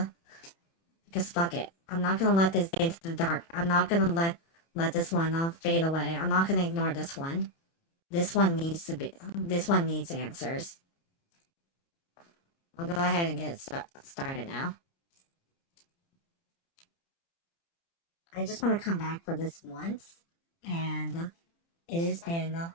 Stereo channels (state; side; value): late; right; 30 ms